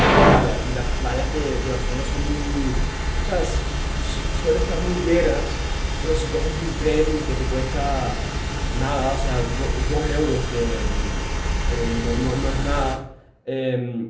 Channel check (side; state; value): both; identical; correlation 1.00